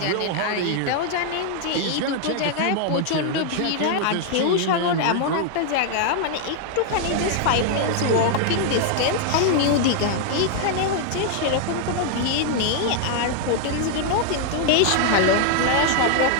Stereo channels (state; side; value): different; both; correlation 0.00